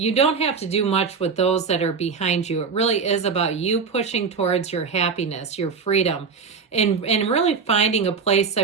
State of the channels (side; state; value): left; quieter; 5.4 dB